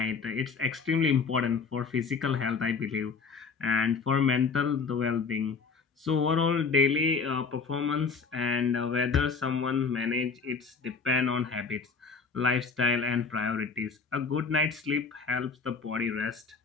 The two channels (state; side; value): quieter; right; 5.0 dB